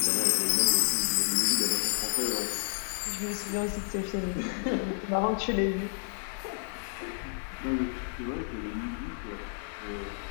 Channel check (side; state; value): right; silent; digital silence